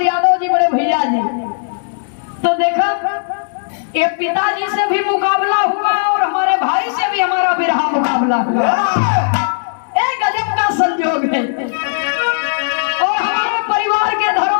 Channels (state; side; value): silent; right; digital silence